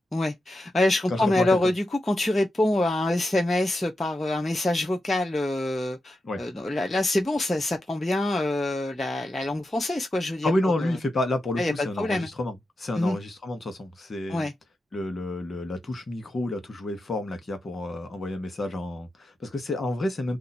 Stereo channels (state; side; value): normal; both; correlation 0.89